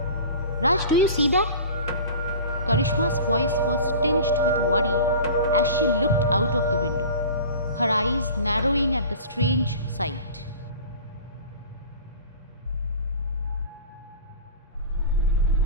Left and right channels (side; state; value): both; inverted; correlation -0.38